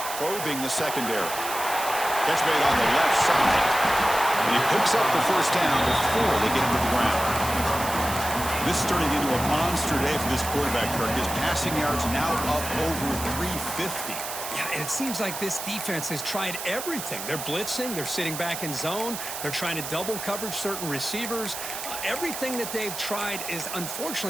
probing the secondary. Catch made on the left side. And he picks up the first down before they get him to the ground. This is turning into a monster day for this quarterback, Kirk. His passing yards now up over 350. Yeah, and it seems like this defense has tried everything. They're blitzing, they're sitting back in zone, they're trying to double coverage certain receivers. Everything that they've tried is,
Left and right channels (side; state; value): right; noise; hiss, 7 dB below the sound